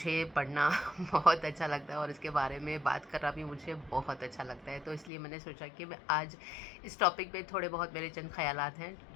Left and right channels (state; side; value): drops out; right; at 5.1 s